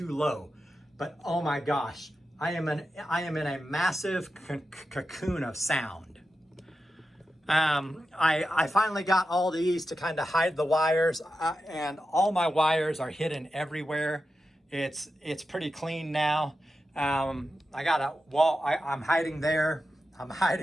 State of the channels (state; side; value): normal; both; correlation 0.90